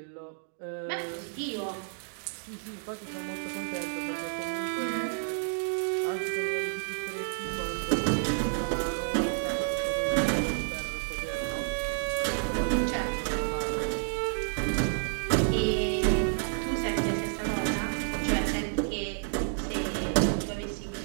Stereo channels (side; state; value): left; silent; digital silence